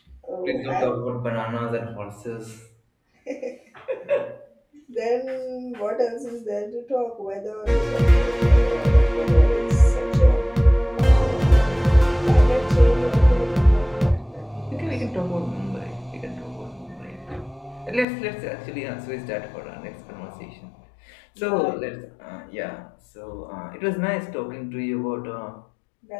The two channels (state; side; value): drops out; right; at 18.1 s